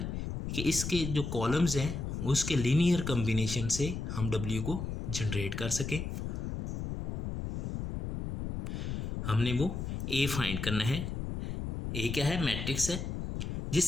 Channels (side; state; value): left; noise; rumble, 4 dB below the sound